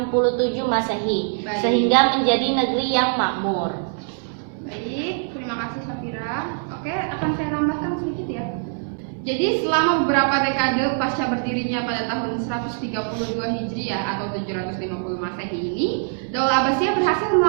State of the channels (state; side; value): silent; left; 63 dB below the other